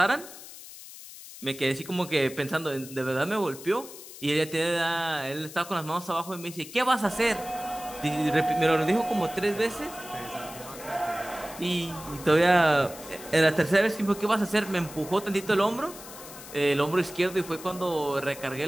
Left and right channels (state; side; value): noise; left; hiss, 15 dB below the sound